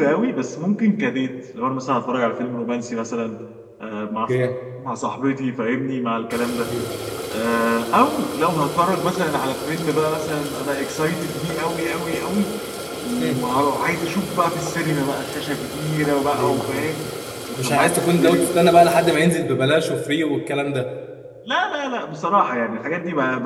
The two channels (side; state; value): both; identical; correlation 1.00